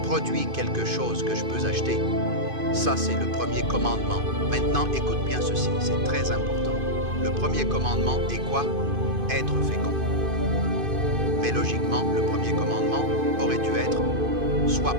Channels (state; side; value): late; left; 2.5 ms